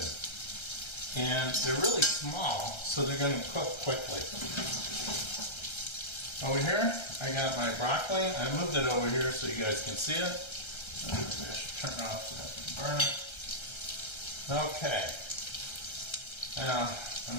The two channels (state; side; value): late; right; 1.3 ms